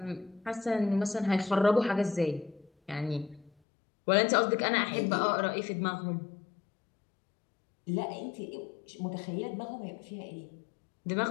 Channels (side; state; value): right; drops out; at 3.5 s